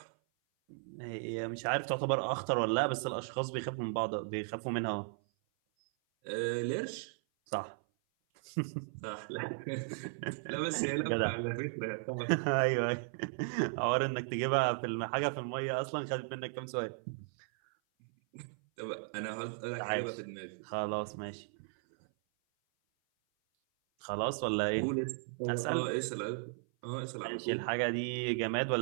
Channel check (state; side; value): silent; left; 54 dB below the other